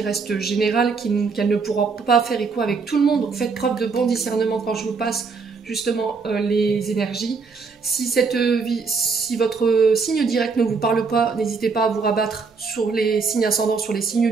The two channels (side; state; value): left; quieter; 4.8 dB